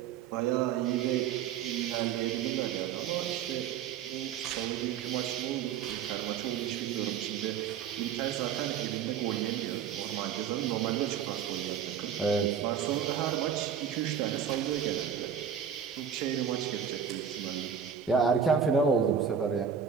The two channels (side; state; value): left; quieter; 7.8 dB